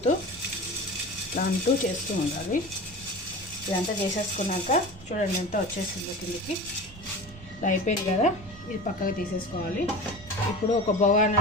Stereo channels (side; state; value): right; noise; rumble, 20 dB below the sound